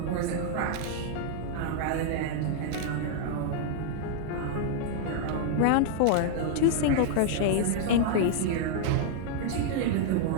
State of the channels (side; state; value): both; different; correlation -0.01